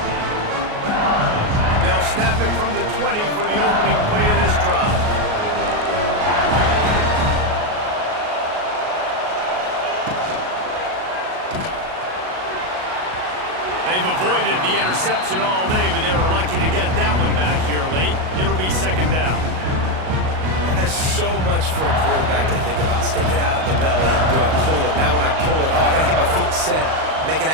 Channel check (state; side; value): late; left; 38 ms